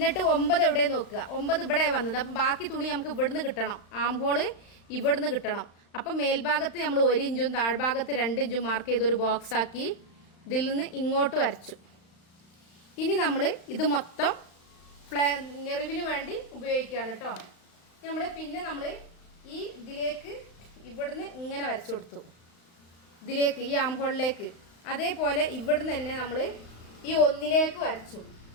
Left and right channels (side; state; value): right; late; 35 ms